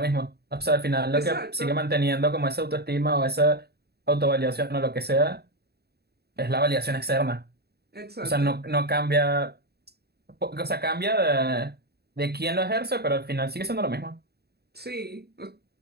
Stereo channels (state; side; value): late; left; 0.47 ms